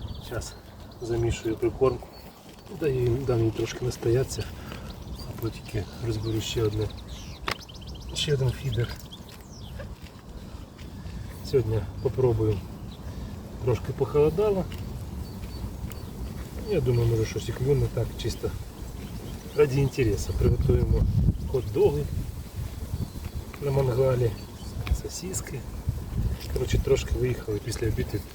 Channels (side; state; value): both; identical; correlation 1.00